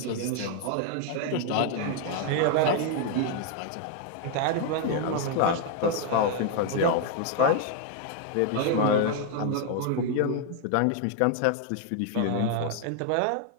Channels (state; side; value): different; both; correlation 0.00